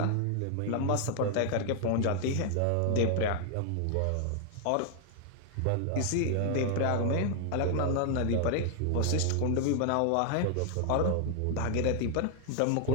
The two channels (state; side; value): different; both; correlation 0.00